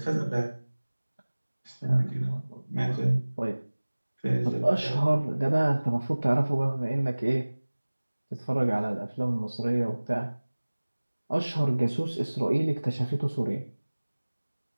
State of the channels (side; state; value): both; inverted; correlation -1.00